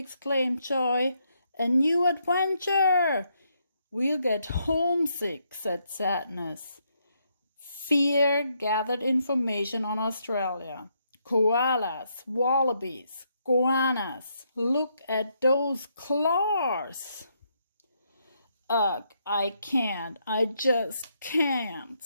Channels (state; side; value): inverted; both; correlation -0.76